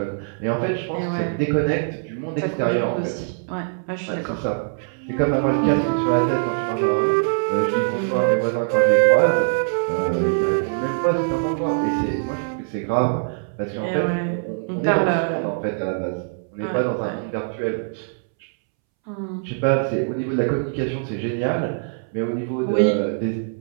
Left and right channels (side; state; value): left; silent; 64 dB below the other